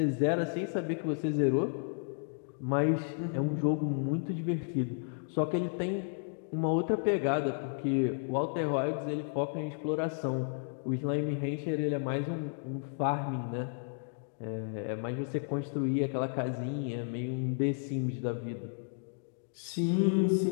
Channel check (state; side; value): silent; right; digital silence